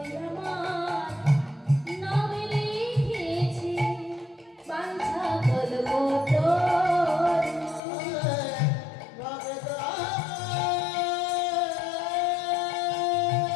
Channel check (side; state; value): right; drops out; at 7.8 s